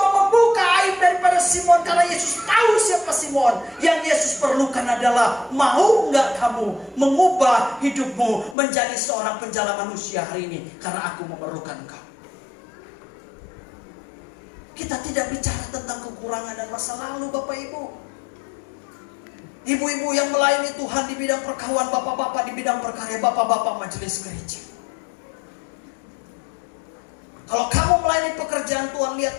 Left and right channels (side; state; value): right; drops out; at 8.6 s